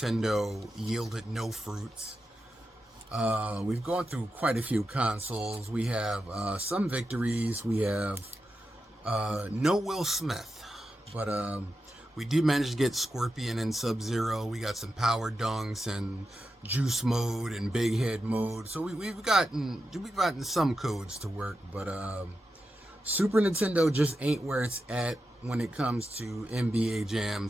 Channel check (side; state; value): both; normal; correlation 0.89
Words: yielded no fruits. We've gone through quite a few consoles. We have some victories. We have no Will Smith, but we did manage to get Scorpion and Sub-Zero. We got some Power Dunks and Juice Mode and Big Head Mode. So we've gotten some codes to work, but Super Nintendo just ain't where it's at when it comes to NBA